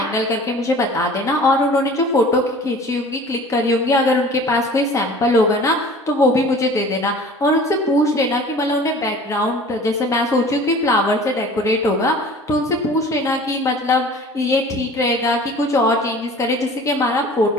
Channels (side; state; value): both; normal; correlation 0.45